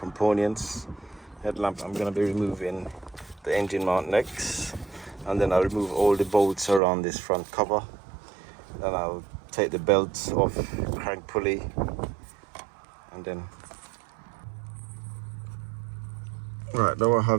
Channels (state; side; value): drops out; left; at 6.8 s